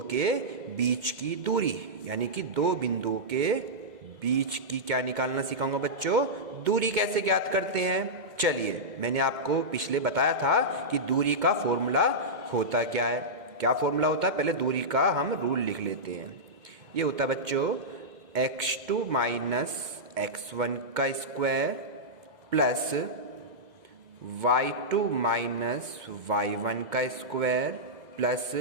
के बीच की दूरी, यानी कि 2 बिंदुओं के बीच की क्या निकालना सिखाऊंगा बच्चों। दूरी कैसे ज्ञात करते हैं, चलिए मैंने आपको पिछले बताया था कि दूरी का फॉर्मूला होता क्या है। क्या फॉर्मूला होता है, पहले दूरी का हम रूल लिख लेते हैं। ये होता है बच्चों x2 माइनस x1 का square plus y2 minus y1 का square plus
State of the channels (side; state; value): left; late; 2.2 ms